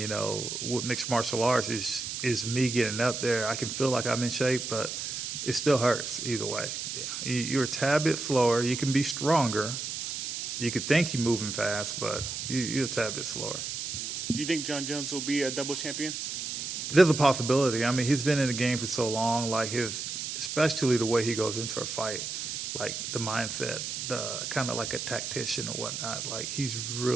with mixed martial arts is me getting up there. I can feel like I'm in shape, but it still hurts either way. Yeah. You're a tad bit slower. You can be stronger. You could think you're moving fast, but you're a tad bit slower. Do you think John Jones will be a double champion? There's a possibility. I mean, he's been in the game for so long. Like especially the way he goes into a fight, like the mindset, kind of like a tactician or whatnot. Like he's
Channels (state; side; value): noise; right; hiss, 5 dB below the sound